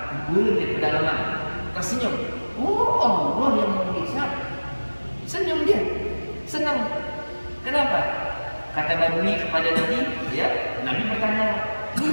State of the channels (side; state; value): both; inverted; correlation -1.00